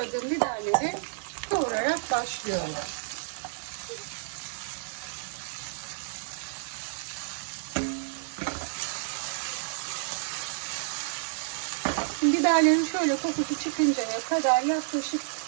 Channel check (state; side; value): silent; left; 58 dB below the other